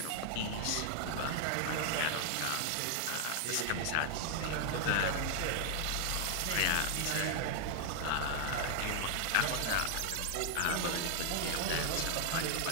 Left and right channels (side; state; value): both; different; correlation 0.00